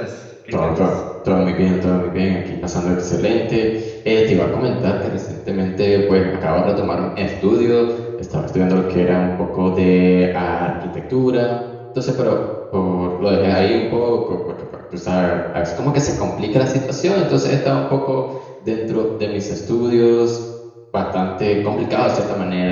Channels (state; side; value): identical; both; correlation 1.00